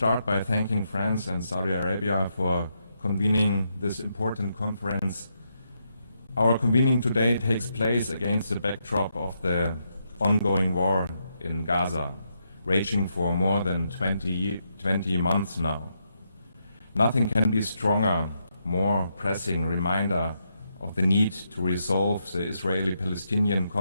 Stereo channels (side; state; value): both; inverted; correlation -0.80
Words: by thanking France and Saudi Arabia for convening this important conference. Our convening today takes place against the backdrop of the ongoing war in Gaza, raging for more than 20 months now. Nothing can be stronger, more pressing reminder of the need to resolve the Israeli-Palestinian